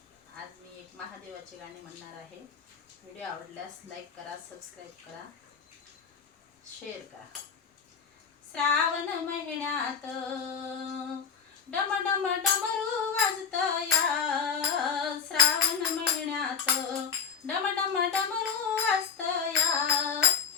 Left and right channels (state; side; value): quieter; right; 6.6 dB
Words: आज मी एक महादेवाचे गाणे म्हणणार आहे। व्हिडिओ आवडल्यास लाईक करा, सबस्क्राइब करा, शेअर करा। श्रावण महिन्यात डम डम डमरू वाजतया, श्रावण महिन्यात डम डम डमरू वाजतया,